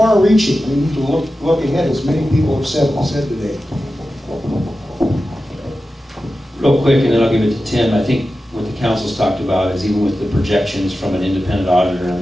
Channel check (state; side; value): normal; both; correlation 0.93